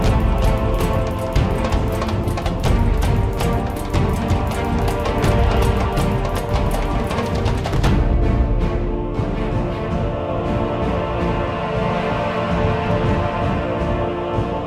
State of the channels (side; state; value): both; identical; correlation 1.00